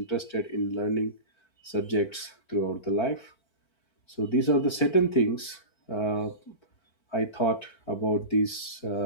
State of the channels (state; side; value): late; right; 4.5 ms